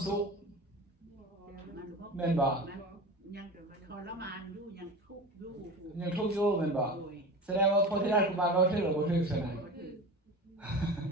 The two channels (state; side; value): normal; both; correlation 0.31